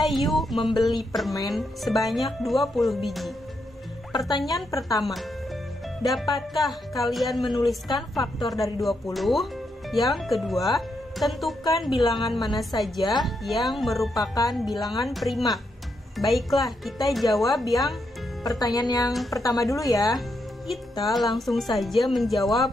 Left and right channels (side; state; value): both; normal; correlation 0.81